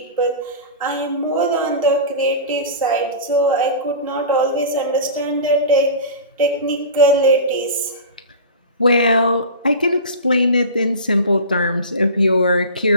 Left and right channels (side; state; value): both; inverted; correlation -0.32